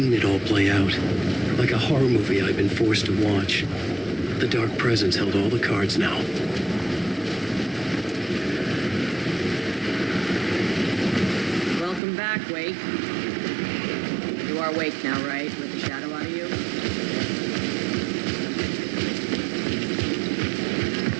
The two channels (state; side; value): drops out; left; at 12.0 s